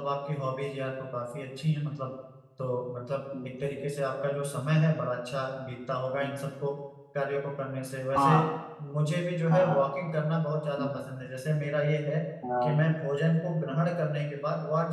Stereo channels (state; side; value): identical; both; correlation 1.00